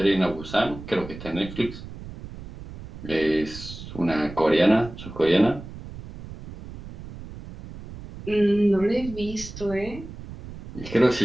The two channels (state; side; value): noise; right; rumble, 13 dB below the sound